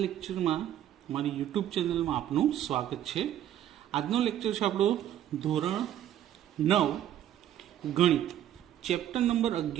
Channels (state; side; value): quieter; left; 11.5 dB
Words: લેક્ચરમાં મારી યુટ્યુબ ચેનલમાં આપનું સ્વાગત છે. આજનો લેક્ચર છે આપણો ધોરણ 9 ગણિત, ચેપ્ટર નંબર